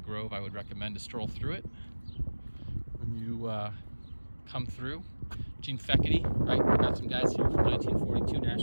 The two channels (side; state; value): both; inverted; correlation -1.00